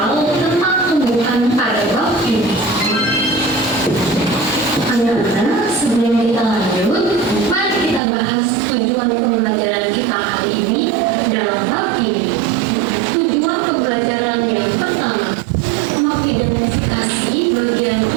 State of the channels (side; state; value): left; drops out; at 8.0 s